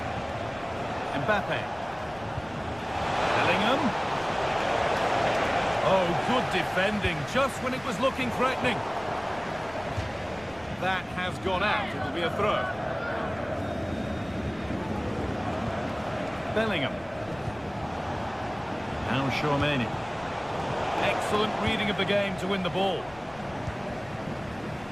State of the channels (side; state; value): left; noise; rumble, 22 dB below the sound